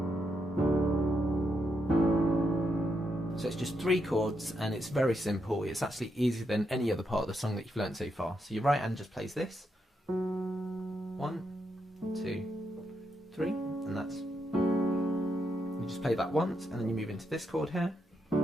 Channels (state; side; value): normal; both; correlation 0.81